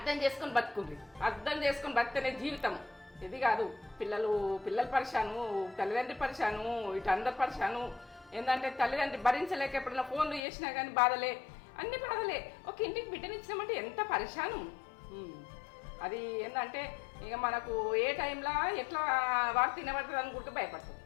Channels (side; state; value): right; drops out; at 10.4 s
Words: చేసుకొని బతికితేనే జీవితం. ఇది కాదు పిల్లలు పరిశాను, తల్లిదండ్రి పరిశాను, ఇటు అందరు పరిశాను. ఏంటంటే తల్లిదండ్రి భరించలేక ఎప్పుడైనా ఫోన్లు చేసినా కానీ బాధలే, అన్ని బాధలే. ఒక ఇంటికి బిడ్డనిచ్చినామంటే ఎంత పరిశాను. అది ఏంటంటే ఇక మనకు ఏ టైంలో ఎట్లా వార్త తినబడుతుంది అని కూడా భయపడతాం,